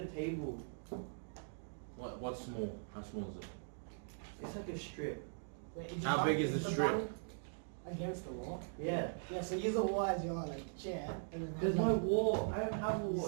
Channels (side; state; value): left; silent; digital silence